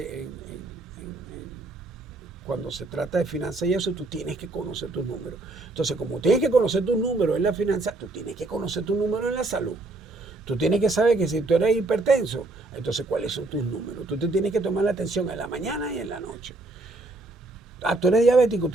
cuando se trata de finanzas y eso, tú tienes que conocer tus números. Entonces, como tienes que conocer tus números en la finanza, tú tienes que conocer tus números en la salud. Tú tienes que saber que si tú eres hipertenso, entonces cuáles son tus números. Tú te tienes que tomar la atención en la mañana y en la noche. Tú eres diabético,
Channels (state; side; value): quieter; left; 3.1 dB